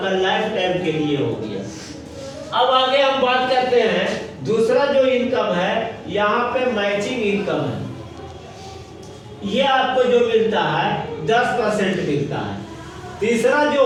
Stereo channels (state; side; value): identical; both; correlation 1.00